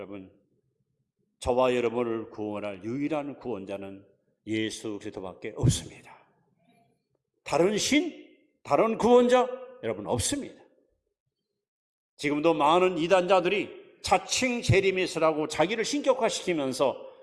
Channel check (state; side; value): identical; both; correlation 1.00